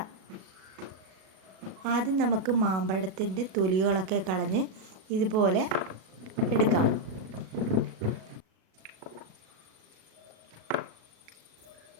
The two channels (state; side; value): late; left; 37 ms